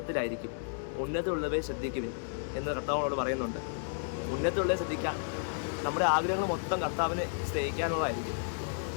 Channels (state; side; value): silent; right; digital silence